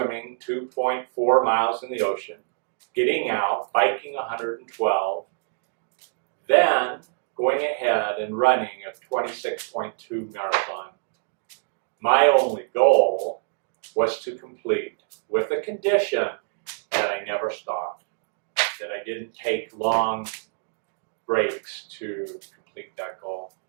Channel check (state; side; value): silent; left; digital silence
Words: 2.4 miles in the ocean, getting out, biking 112, then going ahead and running a 26.2 marathon. My only goal was to complete with the condition that I never stopped, that I didn't take long breaks to complete that goal.